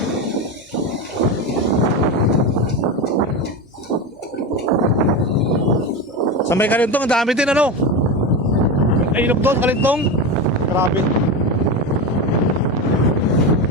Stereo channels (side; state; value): both; normal; correlation 0.19